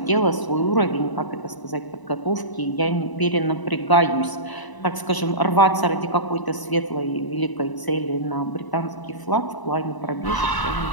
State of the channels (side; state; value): right; late; 1.0 ms